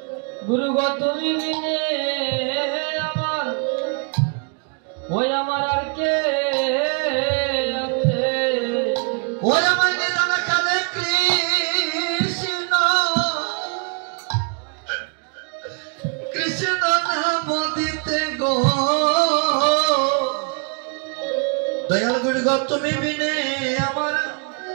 গুরু গো তুমি বিনে আমার ওই আমার আর কে আছে ওই আমার নিদান কালে কৃষ্ণ নাম দিতে গো দয়াল গুড়গ তুমি বিনে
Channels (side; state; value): left; quieter; 38.1 dB